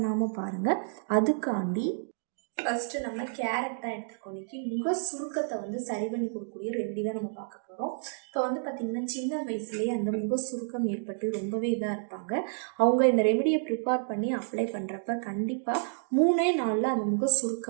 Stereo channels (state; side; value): silent; left; digital silence